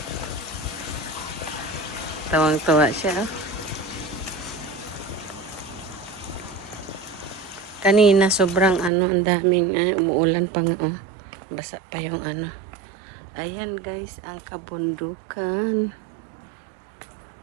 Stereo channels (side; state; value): left; drops out; at 8.9 s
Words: Tawang-tuwa siya, oh. Kanina sobrang ang daming umuulan pa nga, oh. Basa pa yung Ayan, guys, ang kabundukan.